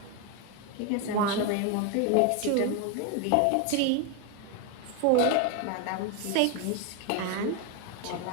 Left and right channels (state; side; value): different; both; correlation 0.02